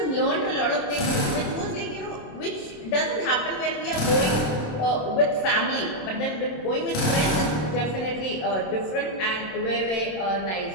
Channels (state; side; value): late; right; 27 ms